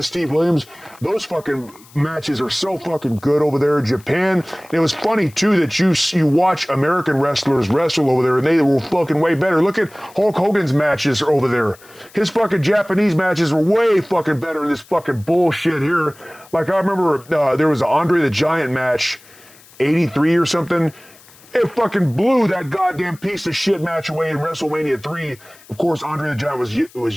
Steve Williams, those fucking matches are so fucking good over there in Japan. And it was funny too that you watch American wrestlers wrestle over there, and they were fucking way better. Look at Hulk Hogan's matches over there. His fucking Japanese matches were way fucking better than this fucking bullshit here. Like I remember there was an Andre the Giant match, 83 or something. It fucking blew that goddamn piece of shit match away in WrestleMania 3. Of course, Andre the Giant was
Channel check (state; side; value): noise; left; hiss, 25 dB below the sound